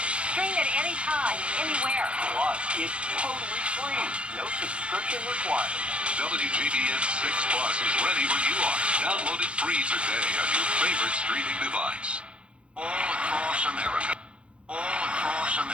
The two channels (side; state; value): left; late; 0.059 ms